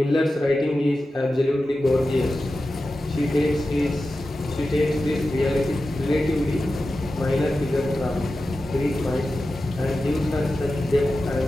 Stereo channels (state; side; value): normal; both; correlation 0.93